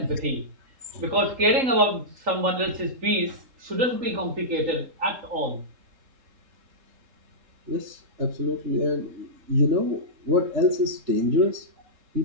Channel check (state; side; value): late; left; 3.8 ms